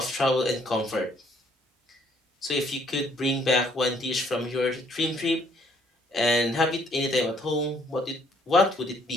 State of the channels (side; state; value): both; normal; correlation 0.64